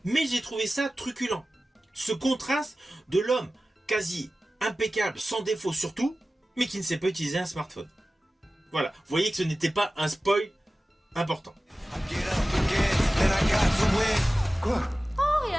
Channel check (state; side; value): normal; both; correlation 0.96